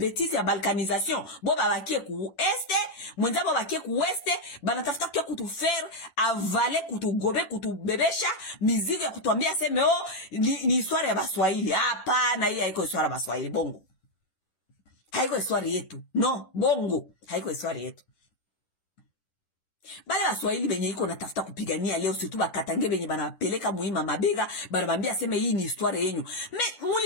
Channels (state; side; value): late; right; 10 ms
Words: ya balkanisation, bon babakie ku este, mwenza babakie ku oueste, banatafuta kia kutu faire avaler, kutu gobe, kutu bebesha, mizigo ya kutuambia seme oh, ni histoire ya baswahili. Hapana, hii haiko histoire ya baswahili, bongo. Haiko histoire yetu. No, bongo. Haiko histoire yetu. Bale baswahili benye iko natafuta kupigania leo, surtout bakatange benye banapeleka muhima mabega, banabambia seme hii ni histoire yenyu. Mais